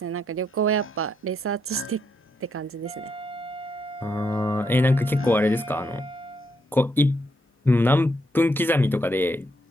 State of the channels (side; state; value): both; normal; correlation 0.78